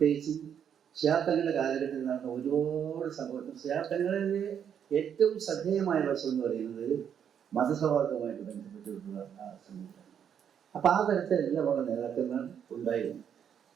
ഷിയാബ്ദങ്ങളുടെ കാലഘട്ടത്തിൽ നടന്ന ഒരുപാട് സംഭവം. ഷിയാബ്ദങ്ങളിലെ ഏറ്റവും ശ്രദ്ധേയമായ വശം എന്ന് പറയുന്നത് മതസൗഹാർദ്ദവുമായിട്ട് ബന്ധപ്പെട്ടിട്ടുള്ള ആ സംവിധാനം. അപ്പം ആ തരത്തിൽ എല്ലാമുള്ള നേതാക്കന്മാർ ഉണ്ടായിരുന്നു.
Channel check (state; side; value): quieter; left; 8.4 dB